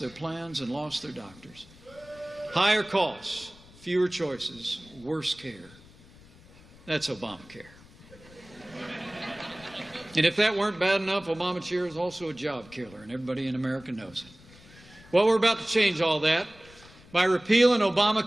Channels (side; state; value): left; noise; rumble, 23 dB below the sound